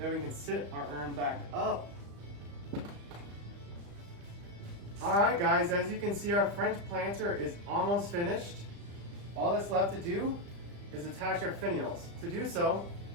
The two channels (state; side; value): late; left; 35 ms